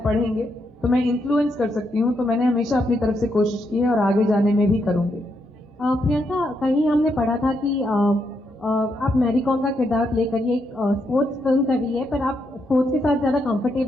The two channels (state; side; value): normal; both; correlation 0.79